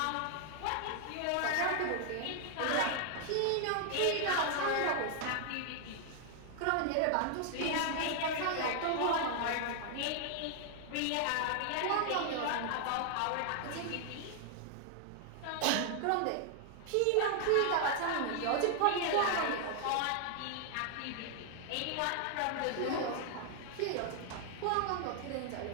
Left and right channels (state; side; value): different; both; correlation 0.00